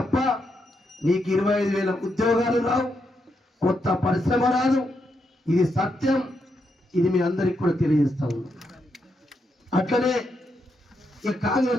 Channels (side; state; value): both; normal; correlation 0.82